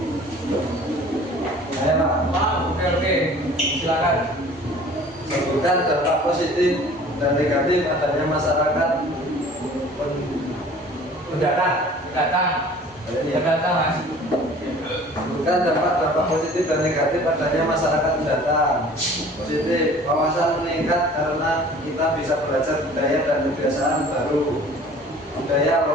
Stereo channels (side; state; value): both; normal; correlation 0.48